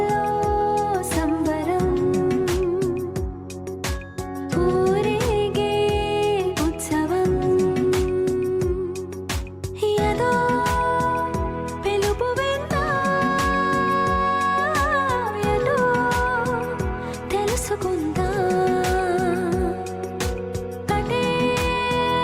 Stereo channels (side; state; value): both; identical; correlation 1.00